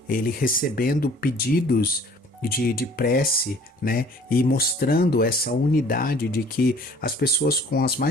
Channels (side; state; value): both; normal; correlation 0.53